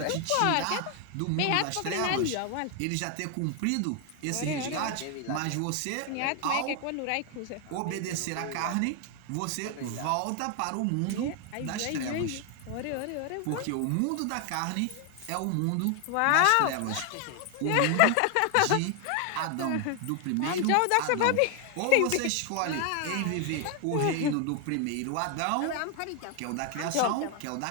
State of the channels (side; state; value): both; different; correlation 0.01